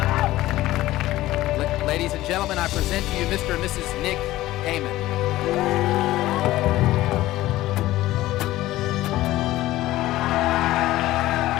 Ladies and gentlemen, I present to you Mr. and Mrs. Nick Heyman.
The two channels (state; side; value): quieter; right; 16.2 dB